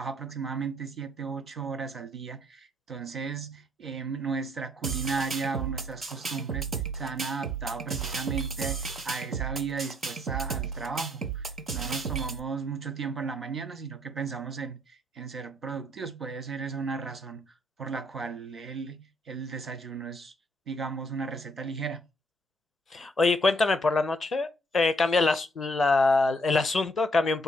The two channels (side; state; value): both; normal; correlation 0.66